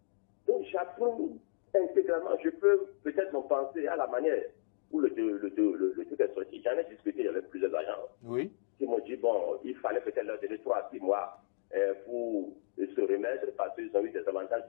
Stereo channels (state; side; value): silent; right; digital silence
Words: Donc j'approuve intégralement. Je peux peut-être en penser à la manière où le truc est sorti. J'en ai discuté avec plusieurs agents. Oui. Qui m'ont dit, bon, il fallait peut-être leur donner 3 à 6 mois pour se remettre parce qu'ils ont eu des avantages